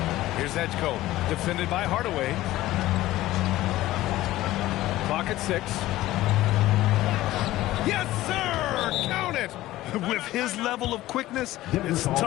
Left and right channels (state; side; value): quieter; right; 16.1 dB